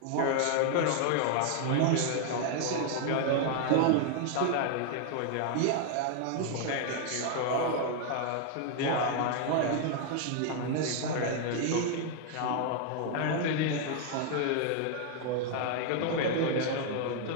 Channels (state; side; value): different; both; correlation 0.00